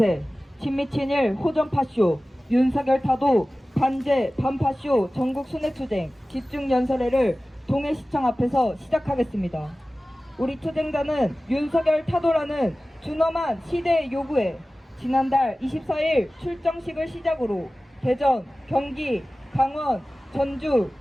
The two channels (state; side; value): normal; both; correlation 0.97